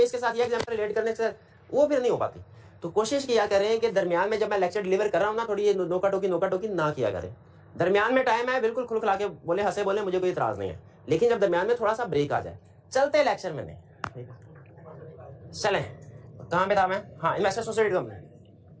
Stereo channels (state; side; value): identical; both; correlation 1.00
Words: इसके साथ ये एग्जाम्पल रिलेट करने से, वो फिर नहीं हो पाती। तो कोशिश किया करें कि दरमियान में जब मैं लेक्चर डिलीवर कर रहा हूँ ना, थोड़ी ये नोका टोकी ना किया करें। दरमियान में टाइम है, बिल्कुल खुलखुला के बोले, हंसे बोले, मुझे कोई इतराज नहीं है, लेकिन जब दरमियान में थोड़ा सा ब्रेक आ जाए, चलते लेक्चर में नहीं। चलें, कहाँ पे था मैं? हाँ, investor associated company,